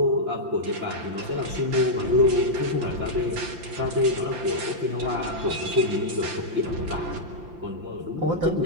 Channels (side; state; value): left; late; 5.8 ms